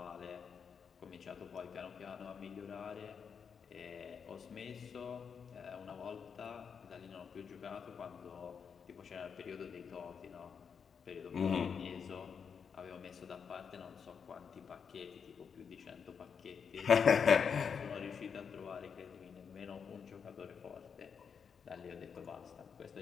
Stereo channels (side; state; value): right; quieter; 6.5 dB